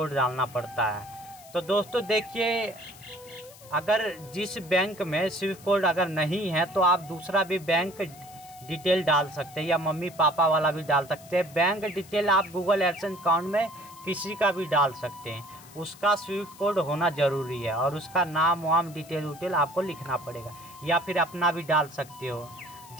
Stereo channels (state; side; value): noise; left; hiss, 21 dB below the sound